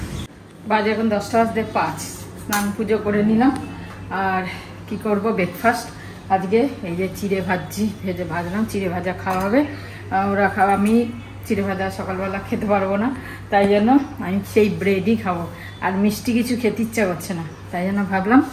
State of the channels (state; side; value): identical; both; correlation 1.00